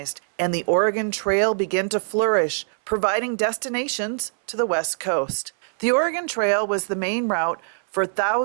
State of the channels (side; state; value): left; silent; 63 dB below the other